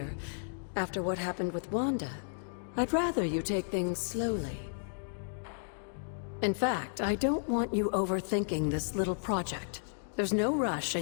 After what happened with Wanda, I'd rather you take things slowly. In fact, I don't want you overthinking this little project. There's no rush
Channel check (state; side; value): silent; right; digital silence